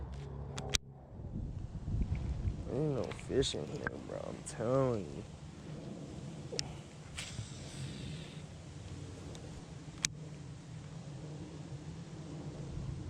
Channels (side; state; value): both; identical; correlation 1.00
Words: Ain't no fish in here, bro. I'm telling you.